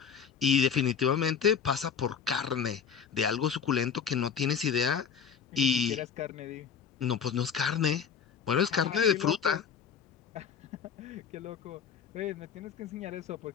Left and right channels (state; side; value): quieter; right; 7.2 dB